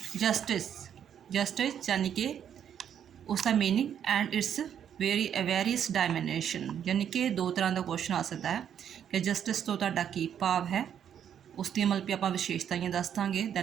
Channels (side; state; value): left; quieter; 9.0 dB